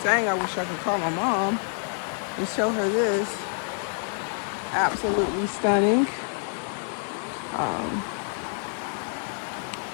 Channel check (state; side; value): silent; right; 55 dB below the other